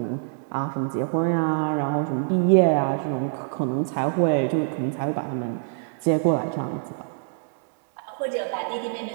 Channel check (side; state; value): left; silent; 62 dB below the other